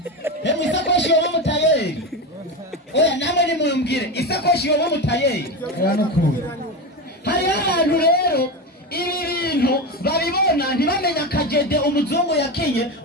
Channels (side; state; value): both; normal; correlation 0.19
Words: Isakoshi yo mutayeri. Oya namwe ni mumbwire isakoshi yo mutayeri. Hari ahantu rero ibi bintu babibona ntibamenya kajede umuzungu yakinye